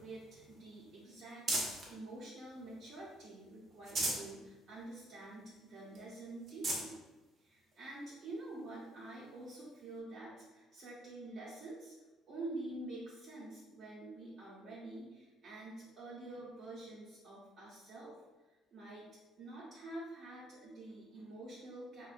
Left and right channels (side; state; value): both; normal; correlation 0.66